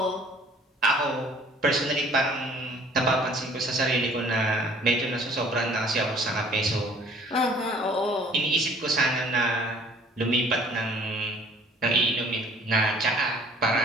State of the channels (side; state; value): both; normal; correlation 0.54